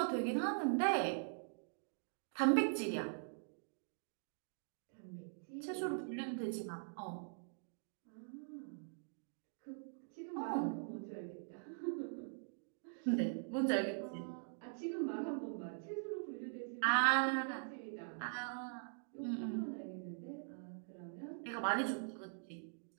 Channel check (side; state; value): left; silent; digital silence